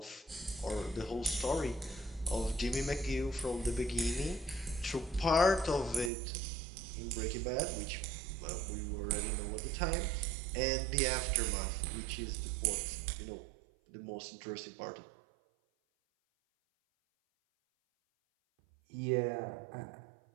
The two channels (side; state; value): left; drops out; at 6.1 s